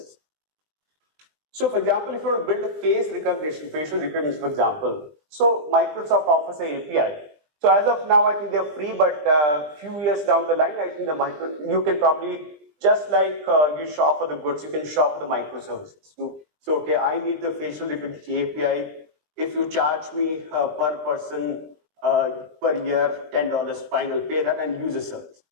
So, for example, if you want to build a facial recognition, for example, so Microsoft offers an API. So as of now, I think they're free, but few years down the line, I think you can probably, just like you shop for the goods, you can shop for the microservices. So okay, I need the facial recognition API. If you charge me per person per year $10, fine, I'll pay that and use the service.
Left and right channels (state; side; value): late; left; 20 ms